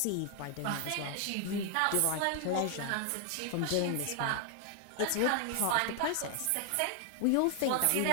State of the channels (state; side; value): different; both; correlation 0.00